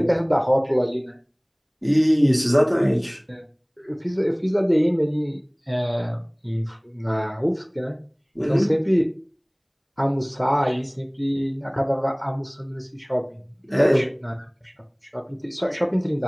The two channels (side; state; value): both; identical; correlation 1.00